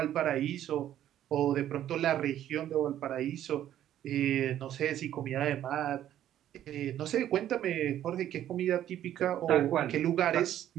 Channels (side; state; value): left; quieter; 11.6 dB